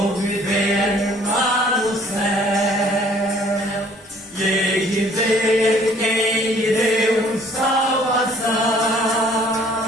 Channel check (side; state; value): both; normal; correlation 0.58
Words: viver lá no céu, e hei de ver quem me deu salvação.